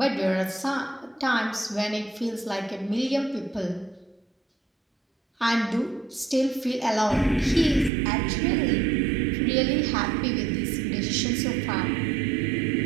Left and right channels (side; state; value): left; drops out; at 7.9 s